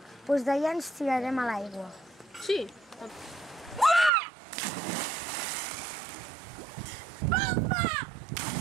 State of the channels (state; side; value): drops out; left; at 4.1 s